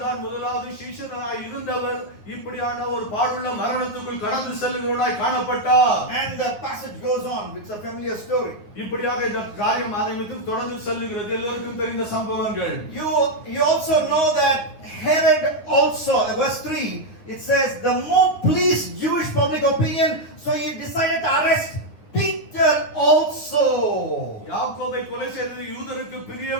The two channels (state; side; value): late; right; 9.6 ms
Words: முதலாவது சீஷனாய் இருந்தவர். இப்படியான ஒரு பாடுள்ள மரணத்துக்குள் கடந்து செல்கிறவராய் காணப்பட்டார். And the passage goes on. It's a familiar story. இப்படியாக இந்த காரியம் ஆரம்பித்து தொடர்ந்து செல்கிறது. எல்லாருக்கும் தெரிந்த சம்பவங்கள். You also know that Herod also, verse 3, it says, the more pleased Jewish public opinion, so he decided to arrest Peter also. யாக்கோபை கொலை செய்தது யூதருக்கு